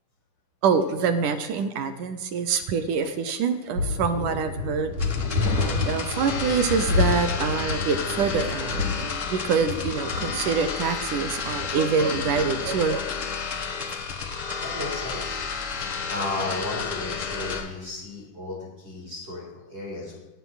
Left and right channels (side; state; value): left; late; 10 ms